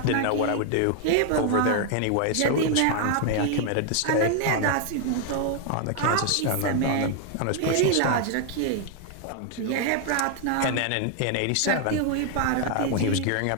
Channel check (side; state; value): both; different; correlation 0.00